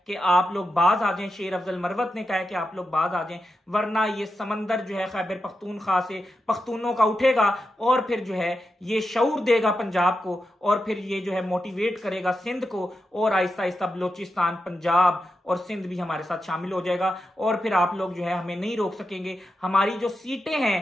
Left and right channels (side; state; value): both; normal; correlation 0.88